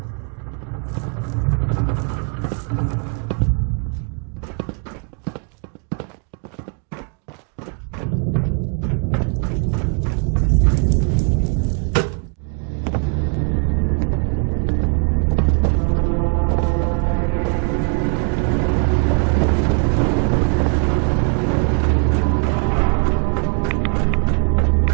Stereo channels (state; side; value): quieter; left; 37.7 dB